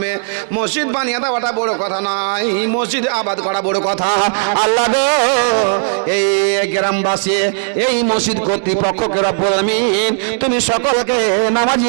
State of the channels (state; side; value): silent; left; digital silence